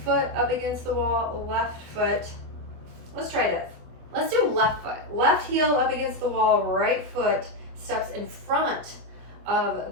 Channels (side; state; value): left; late; 24 ms